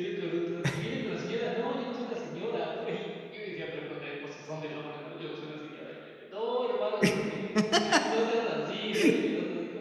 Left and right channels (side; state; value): both; identical; correlation 1.00